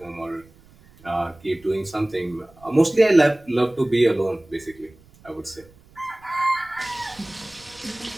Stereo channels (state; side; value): noise; right; rumble, 27 dB below the sound